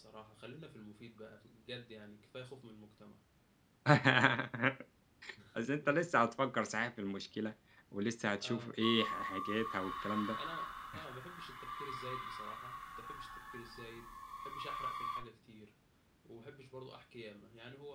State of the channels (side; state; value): both; identical; correlation 1.00